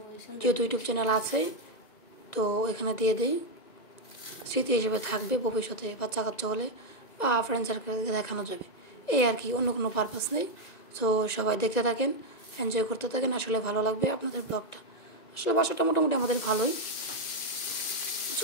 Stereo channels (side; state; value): right; late; 1.9 ms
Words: যেহেতু ইউটিউব চ্যানেল আছে তো এখানে দিয়ে দিই, স্মৃতি হিসেবে থাকবে, ভবিষ্যতে বাচ্চা কাচ্চা হলে বা ফ্রেন্ড সার্কেলকে দেখানো যাবে, এই আর কি, অন্য কোনো পারপাস নেই। তো সবাই দেখতে থাকেন, এনজয় করতে থাকেন, আসলে ভালো লাগবে আপনাদের ব্লগটা। আসলে বাসাটা মোটামুটি আমাদের ভালোই,